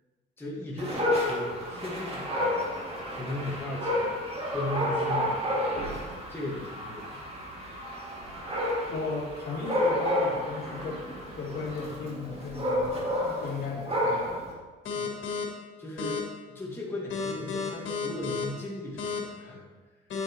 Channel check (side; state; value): both; normal; correlation 0.35